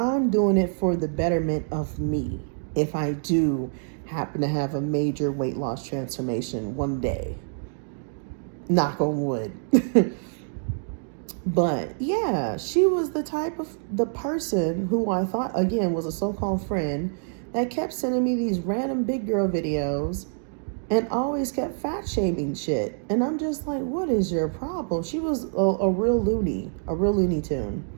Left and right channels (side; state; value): left; silent; digital silence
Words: doing it for the betterment of me. If I do happen to have a major weight loss transformation one day, knock on wood. But yeah, she was the person who I thought, again, was a so-called friend that kept sending me these random big girl videos and always kept fat shaming shit. And I'm just like, what is your problem? She was a real Looney Tune.